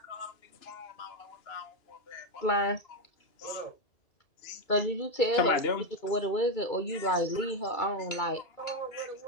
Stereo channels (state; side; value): late; right; 2.3 ms